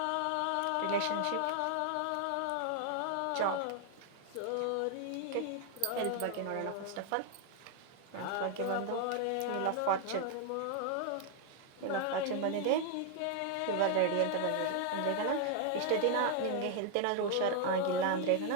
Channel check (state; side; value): different; both; correlation 0.00